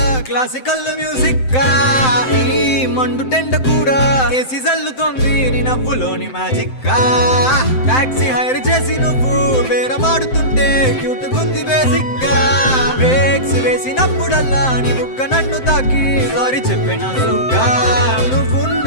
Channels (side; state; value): right; late; 7.7 ms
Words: క్లాసికల్ మ్యూజిక్ గా ఈ మండు టెండ కూడా ఏసీ జల్లుతోంది నీ నవ్వులోని మ్యాజిక్ గా టాక్సీ హైర్ చేసి నువ్వు బేరమాడుతుంటే క్యూట్ గుంది బేసిక్ గా బ్రేక్స్ వేసినప్పుడల్లా నీ బుగ్గ నన్ను తాకి సారీ చెప్పినానుగా